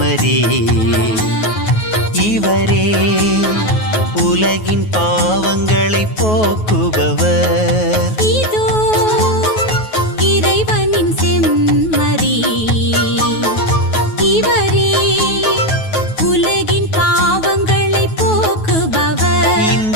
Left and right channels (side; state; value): right; late; 9.3 ms